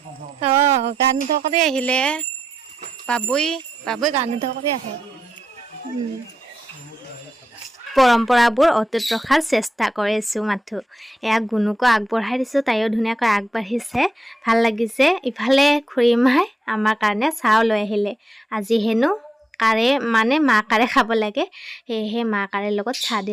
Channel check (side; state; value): both; normal; correlation 0.86